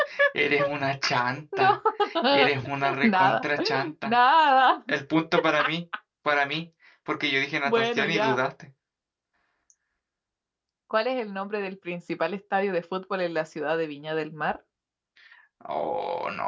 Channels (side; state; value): both; identical; correlation 1.00